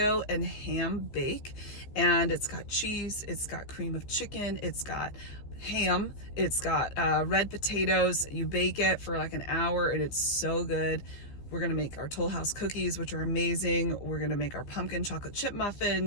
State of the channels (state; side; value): late; right; 15 ms